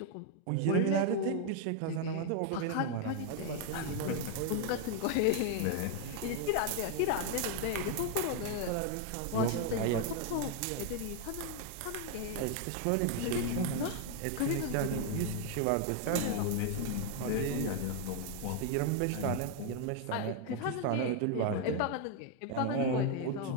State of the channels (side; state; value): both; different; correlation 0.01